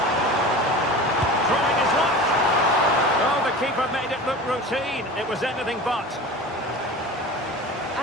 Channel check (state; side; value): normal; both; correlation 0.35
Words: Trying his luck. Oh, the keeper made it look routine. It was anything but.